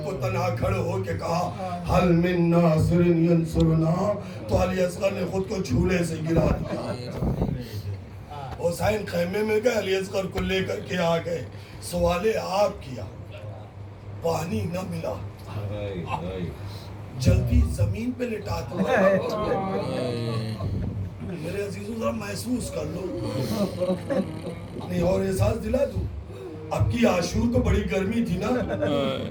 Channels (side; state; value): both; identical; correlation 1.00